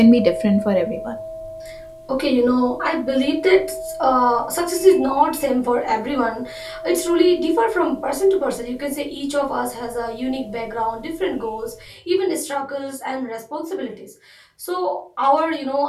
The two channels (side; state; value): both; identical; correlation 1.00